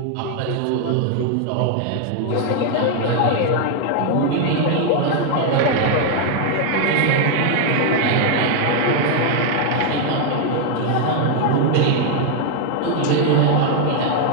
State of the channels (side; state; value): both; different; correlation 0.00